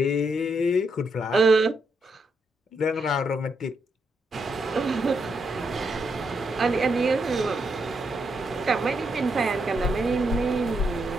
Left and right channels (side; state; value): both; normal; correlation 0.80